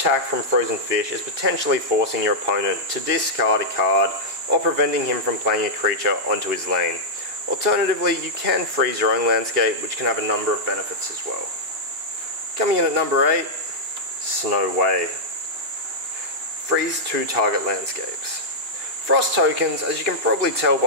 from Frozen Fish is potentially forcing your opponent to discard a card or preventing him from playing a creature onto his lane. Alternatively, you can freeze your own landscape, which can have a number of benefits as well. Coming in at number 8, Snow Way. Freeze 2 target landscapes. Frost tokens, as you can probably tell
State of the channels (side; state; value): left; late; 2.9 ms